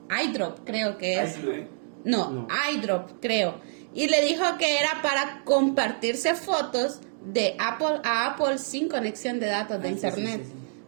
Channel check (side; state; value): left; silent; digital silence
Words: iDrop, creo que es. No, iDrop, creo. Y le dijo que era para compartirse fotos de Apple a Apple sin conexión de datos de internet. Sí.